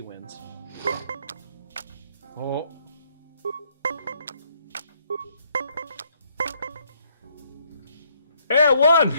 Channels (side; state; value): both; inverted; correlation -0.68